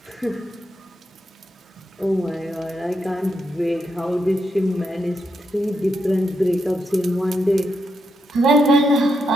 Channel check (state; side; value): normal; both; correlation 0.83